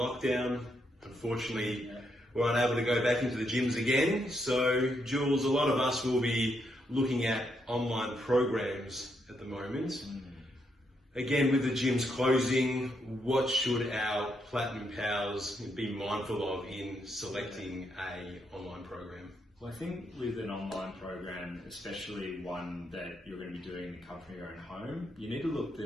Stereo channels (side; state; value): both; normal; correlation 0.78